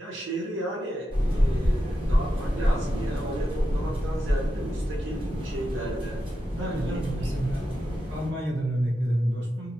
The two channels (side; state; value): both; normal; correlation 0.88